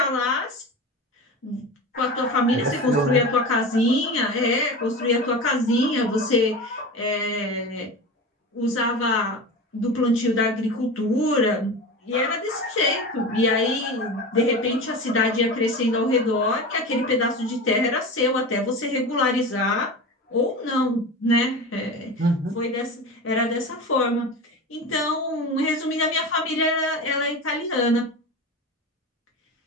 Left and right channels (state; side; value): normal; both; correlation 0.28